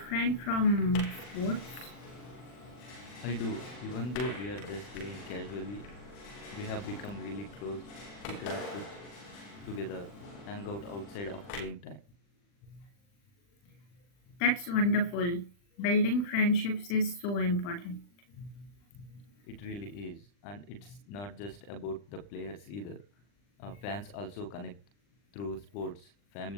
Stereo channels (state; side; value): late; right; 40 ms